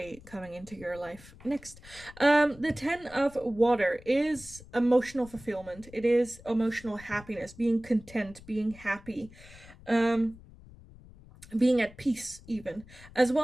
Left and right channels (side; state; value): left; noise; rumble, 20 dB below the sound